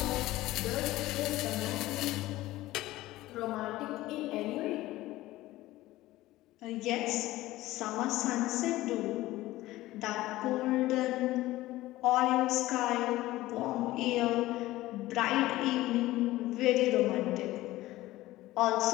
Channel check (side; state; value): right; quieter; 17.0 dB